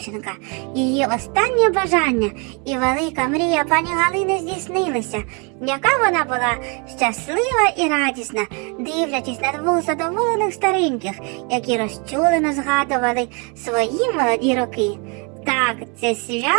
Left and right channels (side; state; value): left; quieter; 33.4 dB